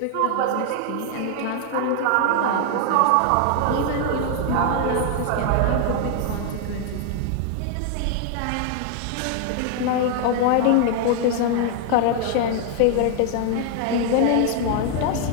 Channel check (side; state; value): both; different; correlation 0.00